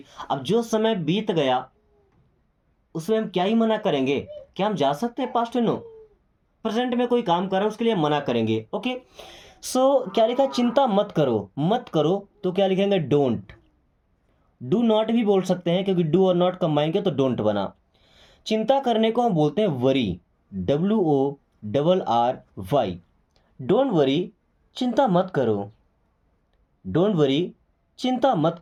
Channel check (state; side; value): identical; both; correlation 1.00